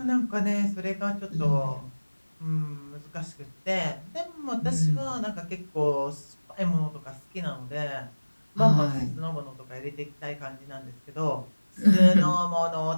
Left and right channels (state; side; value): inverted; both; correlation -1.00